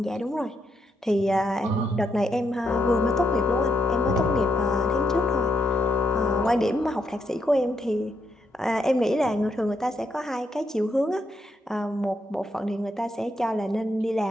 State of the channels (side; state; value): both; normal; correlation 0.79